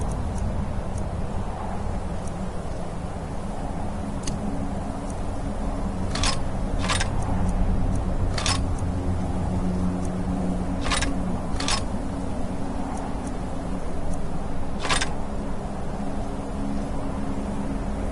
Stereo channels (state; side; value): identical; both; correlation 1.00